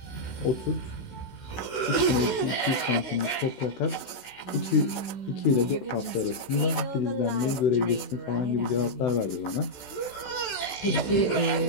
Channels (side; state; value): right; late; 16 ms